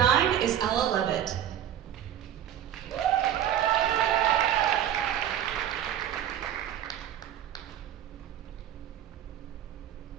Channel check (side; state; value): left; quieter; 10.6 dB